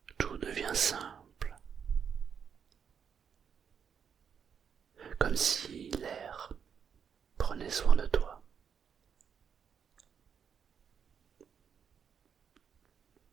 tout devient simple, comme si l'air prenait soin de toi.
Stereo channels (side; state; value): left; quieter; 7.3 dB